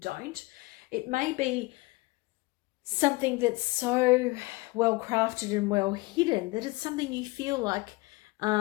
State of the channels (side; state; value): right; quieter; 23.3 dB